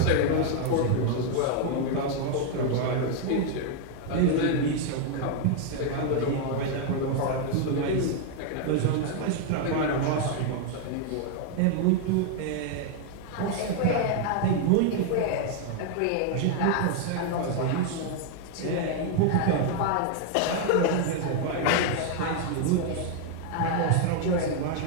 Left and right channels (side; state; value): both; different; correlation 0.00